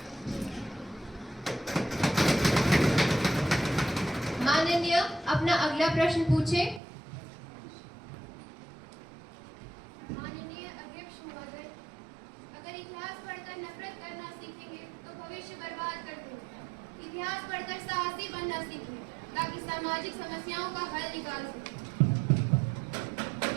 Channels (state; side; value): drops out; left; at 6.8 s